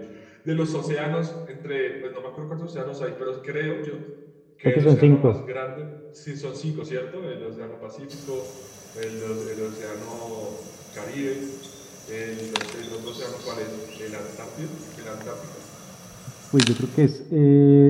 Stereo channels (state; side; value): identical; both; correlation 1.00